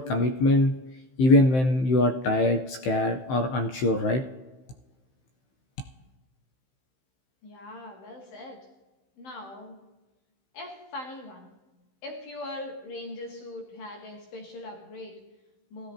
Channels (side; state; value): right; late; 15 ms